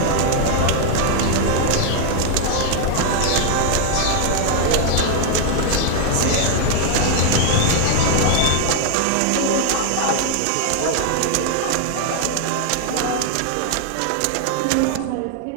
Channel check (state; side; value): different; both; correlation 0.00